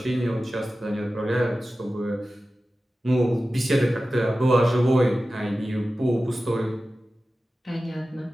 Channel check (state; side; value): normal; both; correlation 0.95